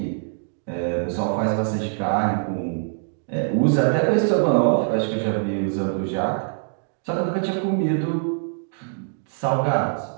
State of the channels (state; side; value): silent; left; digital silence